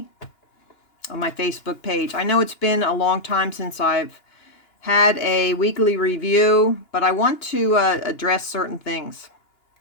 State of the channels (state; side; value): late; right; 2.9 ms